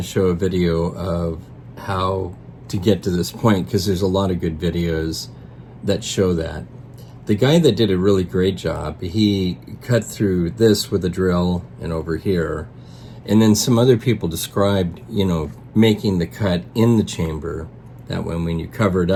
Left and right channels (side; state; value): both; identical; correlation 1.00